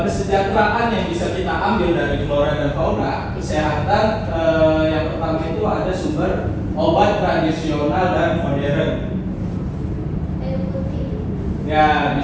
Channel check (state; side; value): identical; both; correlation 1.00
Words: yang bisa kita ambil dari flora dan fauna, kesehatan yang pertama itu ada sumber obat tradisional dan modern. Ya,